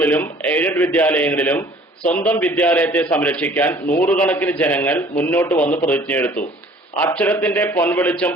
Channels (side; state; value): both; normal; correlation 0.52